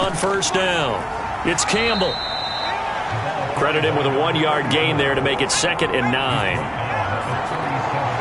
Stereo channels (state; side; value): identical; both; correlation 1.00